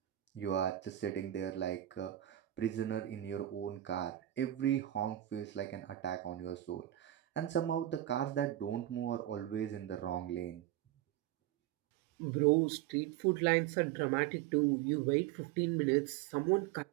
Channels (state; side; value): quieter; left; 13.7 dB